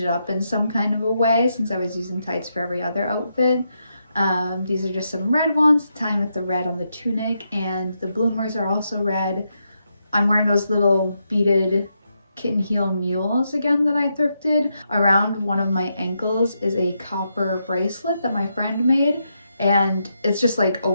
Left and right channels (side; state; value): both; inverted; correlation -0.83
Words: it up in some kind of a way, since I was using tights for every other outfit. These are just some red ones, tying with the red on the tunic, and the bloomers are also red. I'm wearing those little beaded kitten heel mules again that I thrifted. Around one of my ankles is a copper bracelet that my friend made, and it's just like